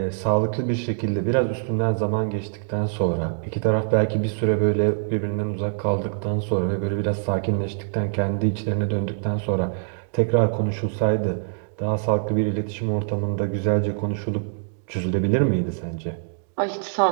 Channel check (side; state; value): left; silent; digital silence